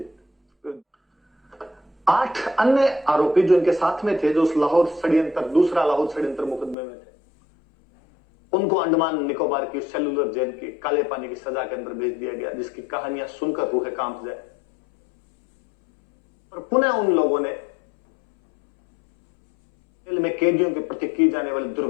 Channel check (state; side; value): drops out; right; at 6.8 s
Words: 8 अन्य आरोपी जो इनके साथ में थे, जो उस दूसरा लाहौर षड्यंत्र मुकदमे में थे, उनको अंडमान निकोबार की सेलुलर जेल की काले पानी की सजा के अंदर भेज दिया गया, जिसकी कहानियां सुनकर रूह कांप जाए। और पुनः उन लोगों ने जेल में कैदियों के प्रति की जाने वाले